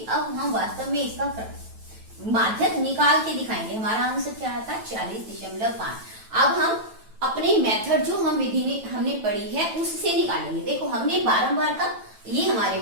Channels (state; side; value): late; left; 9.1 ms